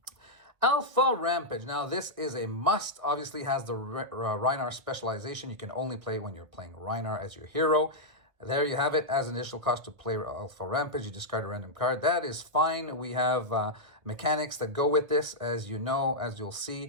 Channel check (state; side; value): late; left; 1.4 ms